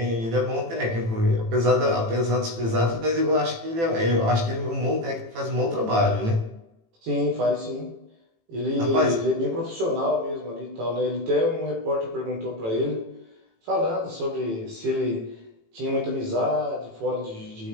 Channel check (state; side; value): late; left; 18 ms